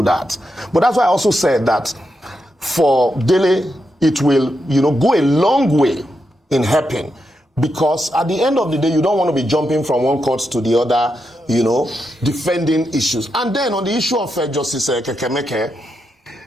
that. But that's why I also said that for Dele, it will, you know, go a long way in helping. Because at the end of the day, you don't want to be jumping from one court to the other, you know, defending issues. And then on the issue of Justice Kekemeke,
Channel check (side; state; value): both; normal; correlation 0.84